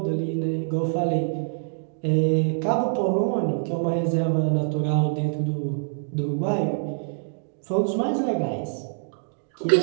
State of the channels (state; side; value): silent; left; digital silence